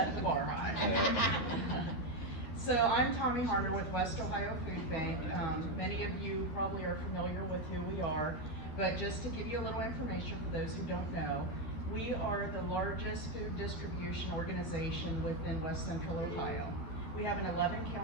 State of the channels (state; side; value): late; right; 12 ms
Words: the bar high. So I'm Tommy Harner with West Ohio Food Bank. Many of you probably are familiar with who we are, but just to give you a little information for those who don't know, we are the largest food distribution organization within West Central Ohio. We have an